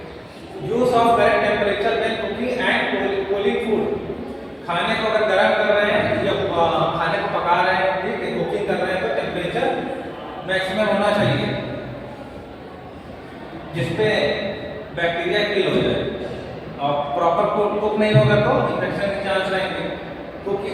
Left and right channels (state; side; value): identical; both; correlation 1.00